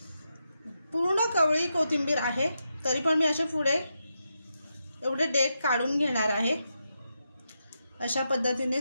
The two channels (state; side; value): inverted; both; correlation -0.86